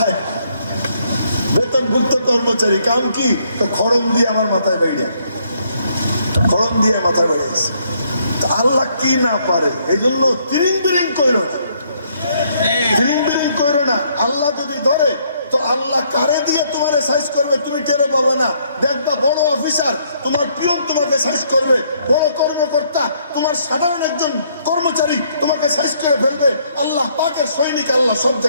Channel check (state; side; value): inverted; both; correlation -0.69